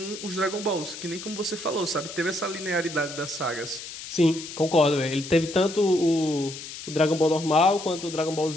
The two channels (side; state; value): left; noise; hiss, 11 dB below the sound